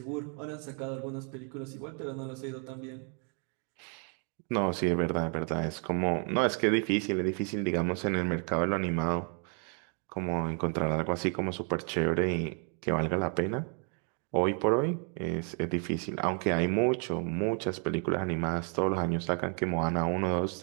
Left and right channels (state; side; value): quieter; left; 39.7 dB